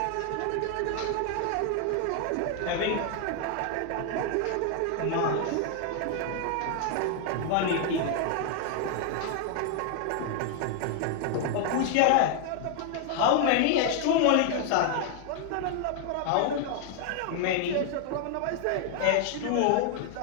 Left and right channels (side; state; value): both; different; correlation 0.00